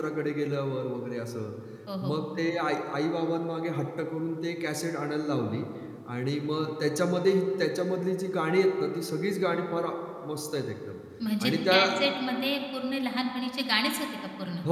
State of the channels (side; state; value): both; identical; correlation 1.00